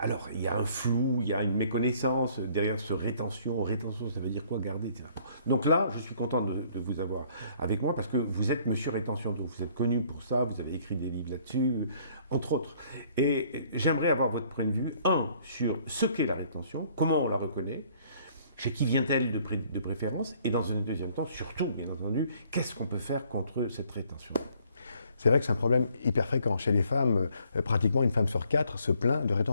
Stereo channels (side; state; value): both; inverted; correlation -0.61